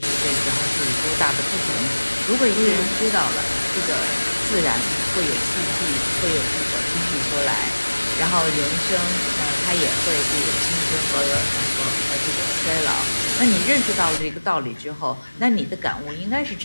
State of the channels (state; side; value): inverted; both; correlation -1.00